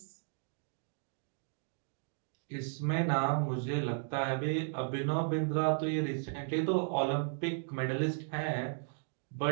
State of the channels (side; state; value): left; silent; digital silence